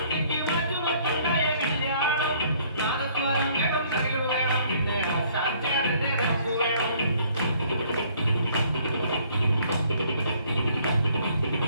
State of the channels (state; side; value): inverted; both; correlation -0.61